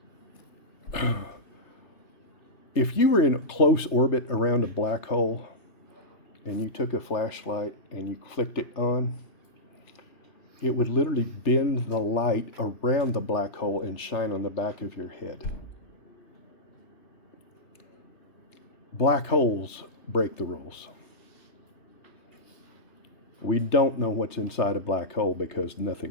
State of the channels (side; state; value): right; late; 3.3 ms